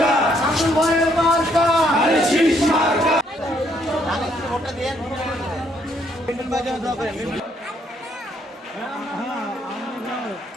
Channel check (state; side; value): normal; both; correlation 0.70